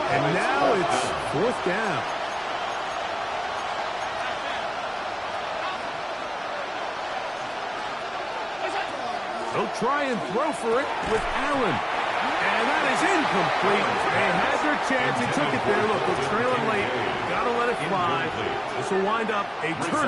And now it's fourth down. They'll try and throw for it with Allen. And that is incomplete. They had their chance. They took it there. Look, they're trailing late. Got to let it fly. This will wind up a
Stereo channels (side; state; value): both; identical; correlation 1.00